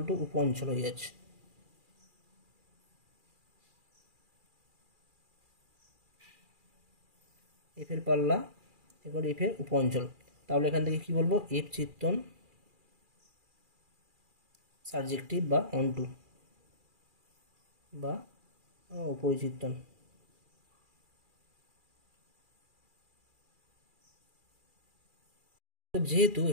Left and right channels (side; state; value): left; late; 2.4 ms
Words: টু উপ অঞ্চল হয়ে যাচ্ছে। এফ এর পাল্লা এবার এফ এর উপ অঞ্চল, তাহলে এখান থেকে কি বলবো, এফ চিত্তন সাবজেক্টিভ বা অনটু বা উপরিচিত্তন। যেহেতু